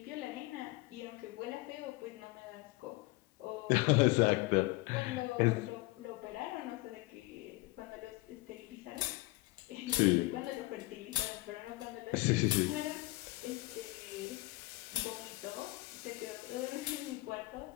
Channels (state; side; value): quieter; right; 21.2 dB